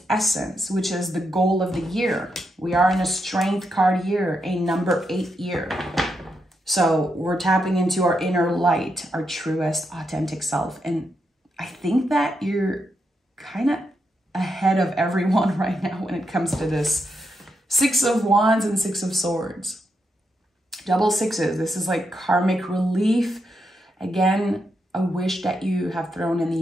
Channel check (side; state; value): both; normal; correlation 0.83